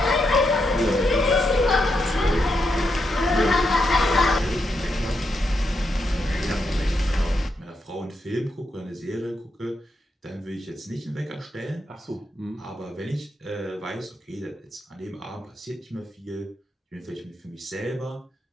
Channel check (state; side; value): normal; both; correlation 0.83